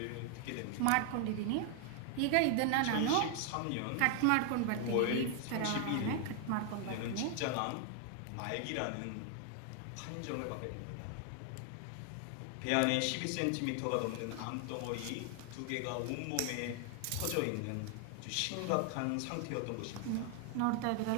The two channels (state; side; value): different; both; correlation 0.00